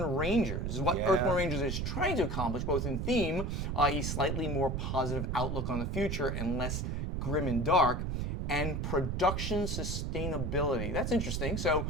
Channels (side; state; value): right; noise; rumble, 1 dB below the sound